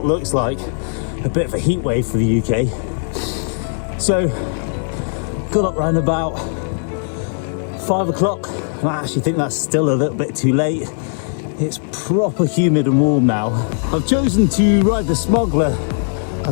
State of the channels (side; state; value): right; silent; 67 dB below the other